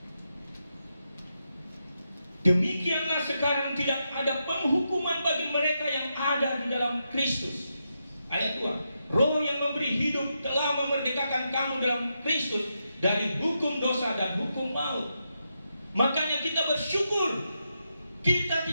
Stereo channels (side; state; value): both; inverted; correlation -0.85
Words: Demikianlah sekarang tidak ada penghukuman bagi mereka yang ada di dalam Kristus. Ayat 2. Roh yang memberi hidup telah memerdekakan kamu dalam Kristus dari hukum dosa dan hukum maut. Makanya kita bersyukur kita